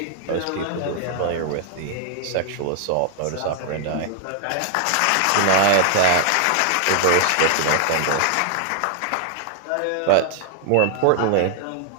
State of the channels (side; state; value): both; different; correlation -0.01